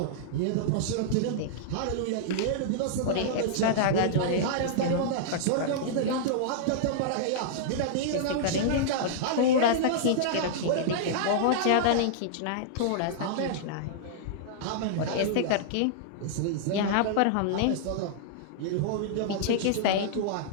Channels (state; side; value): different; both; correlation -0.02